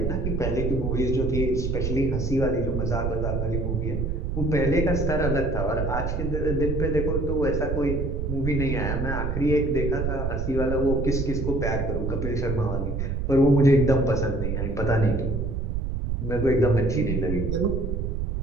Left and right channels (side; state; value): right; noise; rumble, 1 dB below the sound